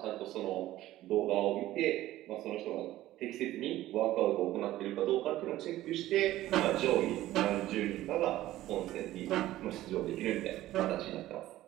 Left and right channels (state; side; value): quieter; left; 15.1 dB